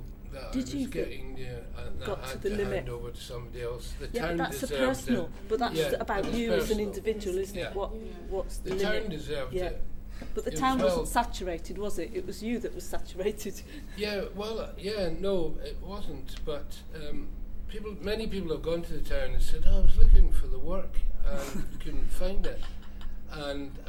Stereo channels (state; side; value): identical; both; correlation 1.00